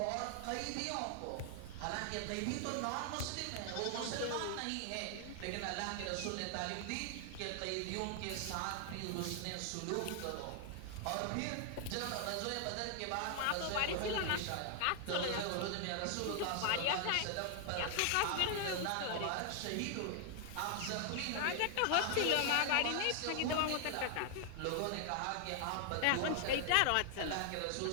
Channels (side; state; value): both; different; correlation 0.00